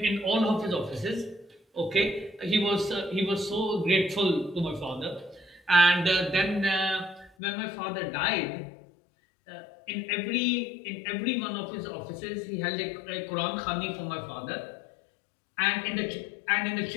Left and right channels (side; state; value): right; drops out; at 7.3 s